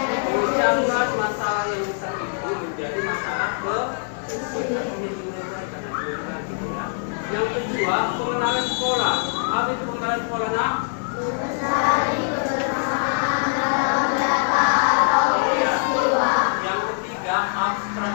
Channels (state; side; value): silent; right; 63 dB below the other